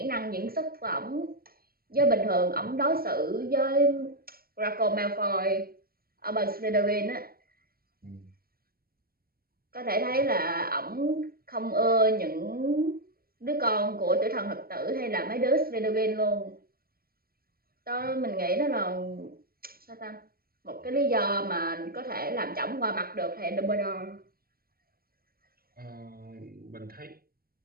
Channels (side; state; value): left; late; 0.43 ms